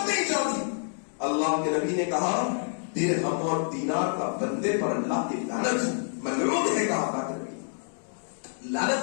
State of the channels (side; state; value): right; silent; digital silence